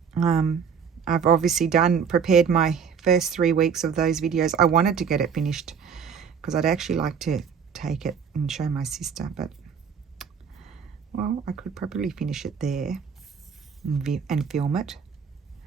I've obviously prepared my first 3 weeks of those videos. I wanted to get it finished because I'd actually like to take it and show my sister, but well, I could probably finish it there and film it.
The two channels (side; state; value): left; quieter; 6.8 dB